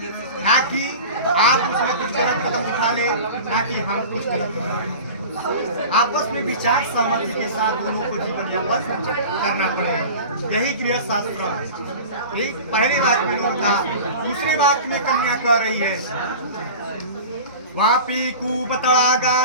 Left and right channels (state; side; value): inverted; both; correlation -0.35